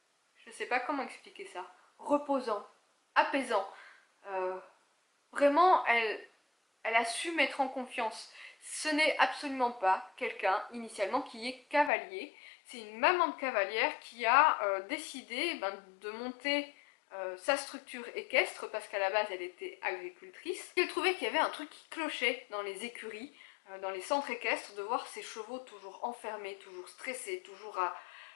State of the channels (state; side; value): drops out; right; at 11.9 s